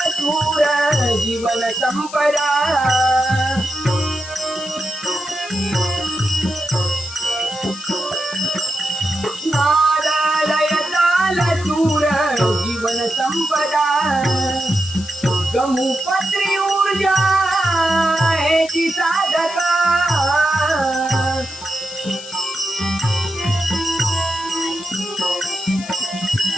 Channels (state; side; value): noise; left; hiss, 15 dB below the sound